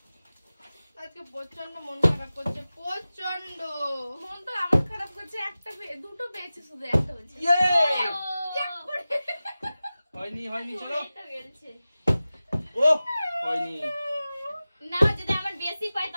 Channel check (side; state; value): both; inverted; correlation -0.96